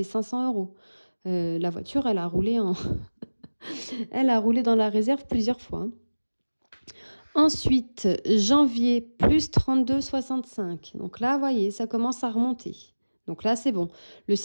500 euros. La voiture, elle a roulé elle a roulé dans la réserve plusieurs fois. Hein. Ensuite, janvier, plus 32,65. Donc là, vous voyez, ça commence à remonter. Donc là, c'est bon. Le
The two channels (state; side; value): inverted; both; correlation -1.00